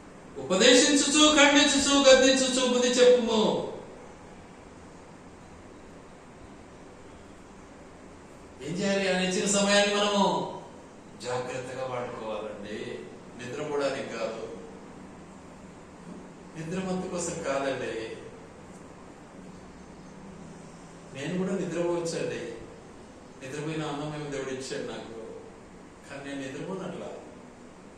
ఉపదేశించుచు, ఖండించుచు, గద్దించుచు బుద్ధి చెప్పుము. ఏం చేయాలి? ఆయన ఇచ్చిన సమయాన్ని మనము జాగ్రత్తగా వాడుకోవాలండి. నిద్రపోవడానికి కాదు, నిద్రమత్తు కోసం కాదండి. నేను కూడా నిద్రపోవచ్చండి. నిద్రపోయిన అన్నమేమో దేవుడు ఇచ్చాడు నాకు, కానీ నేను నిద్రపోనట్లా.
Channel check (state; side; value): identical; both; correlation 1.00